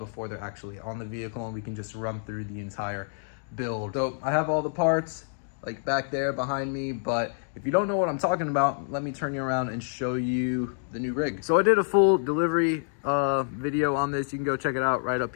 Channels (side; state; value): right; silent; digital silence